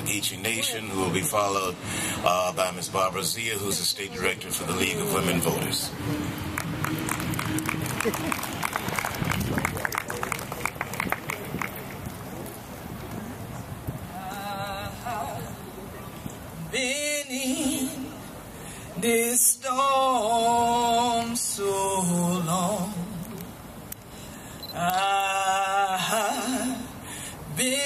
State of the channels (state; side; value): identical; both; correlation 1.00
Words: Geechee Nation, who will be followed by Ms. Barbara Zia, who's the State Director for the League of Women Voters. Been in this storm so long, I've